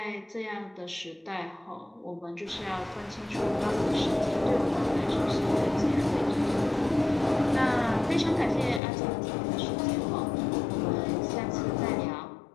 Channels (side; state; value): right; drops out; at 8.8 s